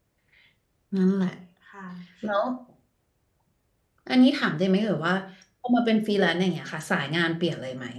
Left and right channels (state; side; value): identical; both; correlation 1.00